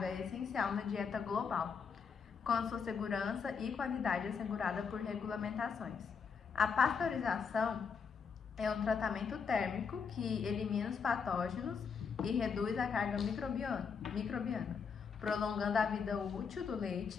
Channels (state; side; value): quieter; right; 6.0 dB